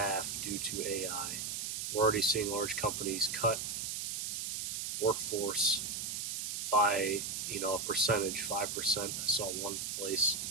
due to AI. We're already seeing large companies cut workforce by a percentage, 5%. I saw one place.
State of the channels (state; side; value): noise; right; hiss, 3 dB below the sound